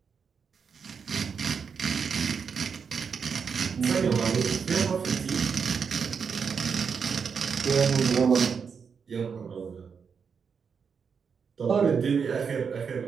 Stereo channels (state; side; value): quieter; left; 6.2 dB